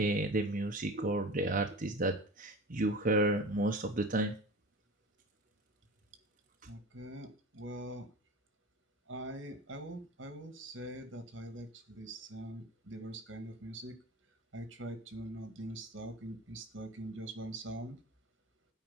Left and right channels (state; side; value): normal; both; correlation 0.35